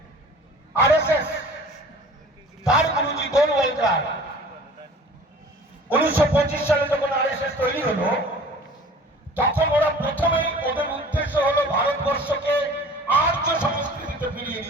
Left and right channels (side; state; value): both; normal; correlation 0.46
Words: আরএসএস তার গুরুজি গোলওয়ালকার 1925 সালে যখন আরএসএস তৈরি হলো, তখন ওরা প্রথমেই ওদের উদ্দেশ্য হলো ভারতবর্ষকে আর্য সংস্কৃতিতে ফিরিয়ে